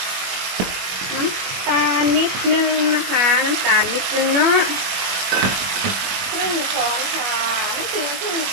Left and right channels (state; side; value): late; left; 21 ms